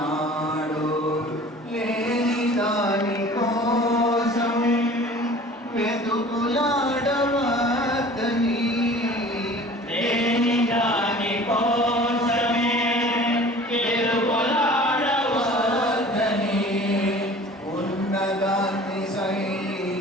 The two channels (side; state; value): both; normal; correlation 0.45